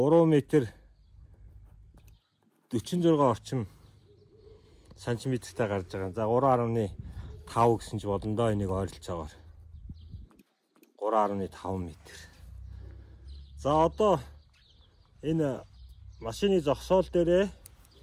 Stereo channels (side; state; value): both; identical; correlation 1.00